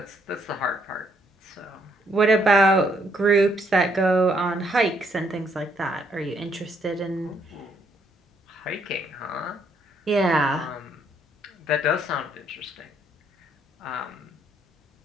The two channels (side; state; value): both; normal; correlation 0.71